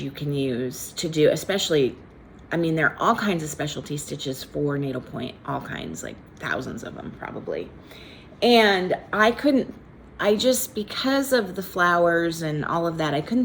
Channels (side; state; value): both; identical; correlation 1.00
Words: you can use to do, especially, I mean, there are all kinds of specialty stitches for needlepoint, all kinds, like thousands of them probably. And because of the flowers and all of that, I